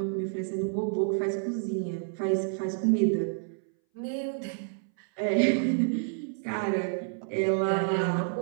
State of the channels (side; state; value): left; silent; 59 dB below the other